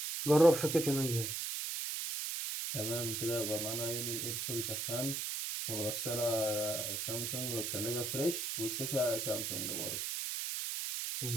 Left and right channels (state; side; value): noise; right; hiss, 2 dB below the sound